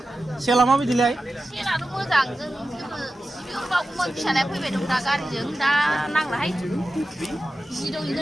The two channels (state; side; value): normal; both; correlation 0.93